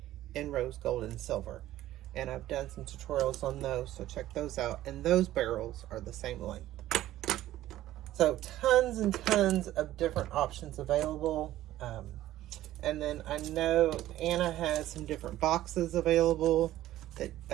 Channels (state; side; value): quieter; left; 14.3 dB